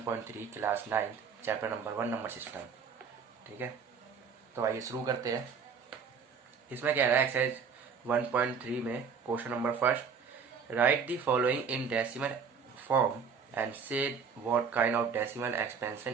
class 9 chapter number 1 number system. ठीक है, तो आइए शुरू करते हैं। इसमें कह रहा है एक्सरसाइज 1.3 में question number first, write the following in decimal form and say what kind of decimal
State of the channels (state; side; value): quieter; left; 6.2 dB